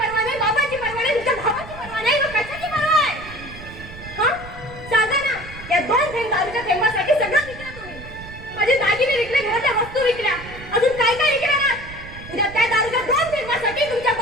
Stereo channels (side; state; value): right; noise; rumble, 15 dB below the sound